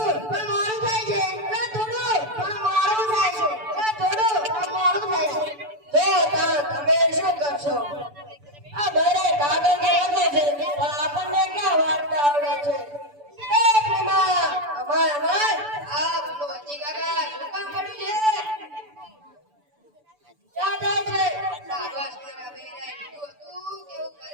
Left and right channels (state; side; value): late; left; 6.9 ms